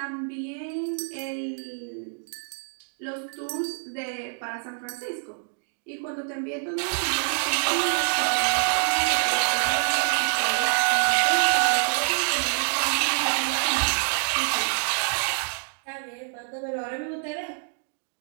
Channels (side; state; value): left; silent; digital silence